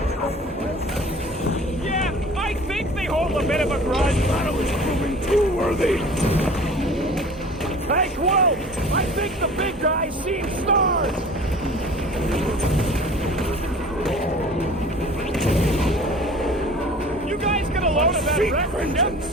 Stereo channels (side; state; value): both; normal; correlation 0.44